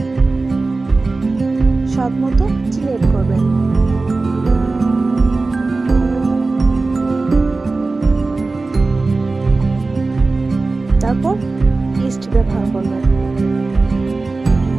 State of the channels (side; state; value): left; quieter; 3.6 dB